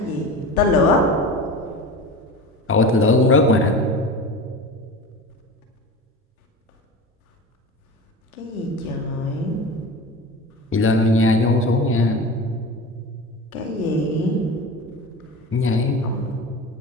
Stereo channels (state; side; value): normal; both; correlation 0.31